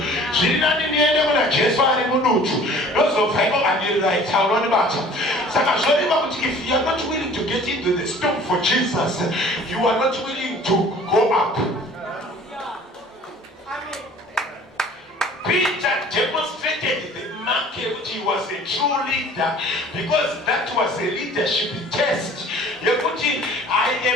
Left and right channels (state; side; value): normal; both; correlation 0.49